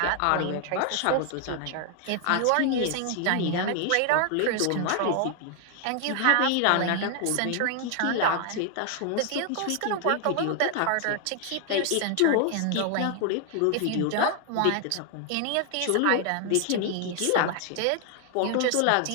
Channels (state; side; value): different; both; correlation 0.00